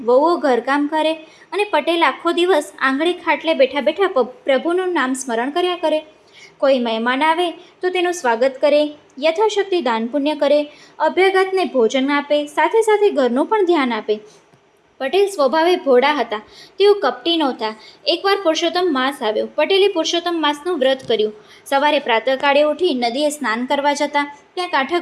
વહુઓ ઘરકામ કરે અને પટેલ આખો દિવસ આંગળે ખાટલે બેઠા બેઠા પ્રભુનું નામ સ્મરણ કર્યા કરે. કોઈ મહેમાન આવે તો તેનું સ્વાગત કરે, યથાશક્તિ દાન પુણ્ય કરે, અભ્યાગતને ભોજન આપે, સાથે સાથે ઘરનું પણ ધ્યાન આપે. પટેલ સ્વભાવે ભોળા હતા. તેઓ કપટી નહોતા. એકવાર પુરુષોત્તમ માસ આવ્યો. પટેલે પુરુષોત્તમ માસનું વ્રત કર્યું. સવારે પ્રાતઃકાળે ઉઠી નદીએ સ્નાન કરવા જતા, ત્યાં કાંઠા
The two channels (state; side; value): identical; both; correlation 1.00